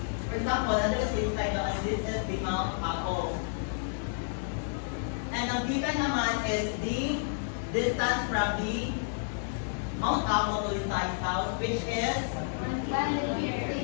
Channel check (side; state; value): right; silent; digital silence